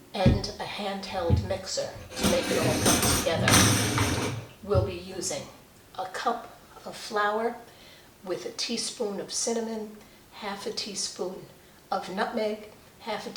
and a handheld mixer to make it all come together. We'll be using a cup of flour with a teaspoon of cinnamon, half a teaspoon of nutmeg, half a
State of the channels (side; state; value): both; identical; correlation 1.00